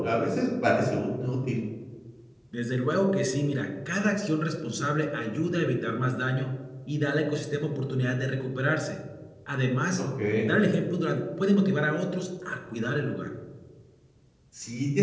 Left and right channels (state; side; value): identical; both; correlation 1.00